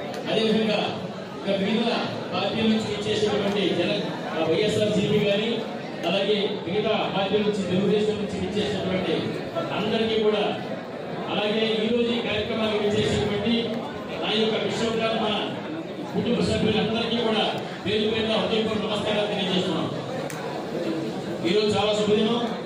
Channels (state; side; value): identical; both; correlation 1.00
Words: అదేవిధంగా మిగతా పార్టీల నుంచి ఇచ్చేసినటువంటి వైఎస్ఆర్సీపీ గారి, అలాగే మిగతా పార్టీల నుంచి తెలుగుదేశం నుంచి ఇచ్చేసినటువంటి అందరికీ కూడా, అలాగే ఈరోజు ఈ కార్యక్రమానికి ఇచ్చేసినటువంటి నా యొక్క విశ్వబ్రాహ్మణ కుటుంబ సభ్యులందరికీ కూడా పేరు పేరున హృదయపూర్వక నమస్కారాలు తెలియజేస్తున్నాం. ఈరోజు చాలా శుభదినం.